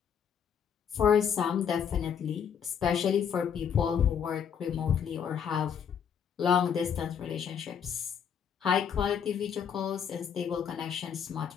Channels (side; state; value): right; quieter; 7.8 dB